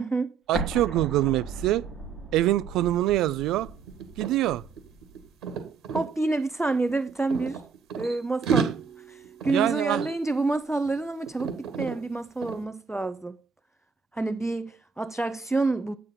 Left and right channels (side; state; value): left; quieter; 6.0 dB